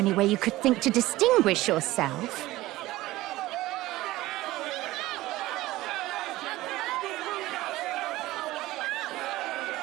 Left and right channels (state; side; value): quieter; left; 17.5 dB